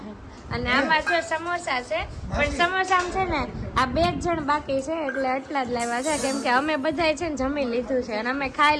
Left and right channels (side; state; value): both; identical; correlation 1.00